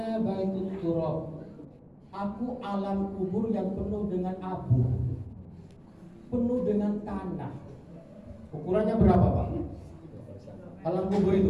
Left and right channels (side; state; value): both; identical; correlation 1.00